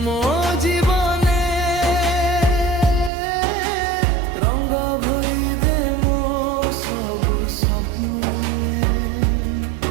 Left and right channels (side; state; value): left; drops out; at 3.1 s